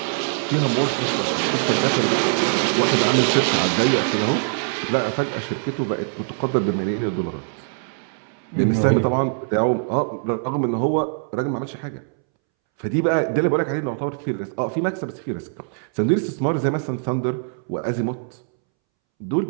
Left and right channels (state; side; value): silent; left; 64 dB below the other